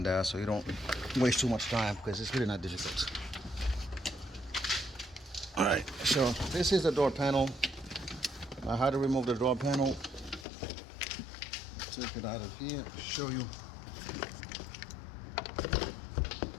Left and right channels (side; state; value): right; drops out; at 10.5 s